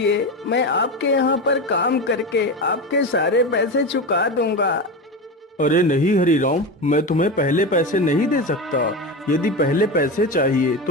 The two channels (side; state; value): both; normal; correlation 0.21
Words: मैं आपके यहाँ पर काम करके आपके सारे पैसे चुका दूंगा। अरे नहीं हरीराम, मैं तुम्हें पहले पैसे नहीं दे सकता। यदि पहले पैसे चाहिए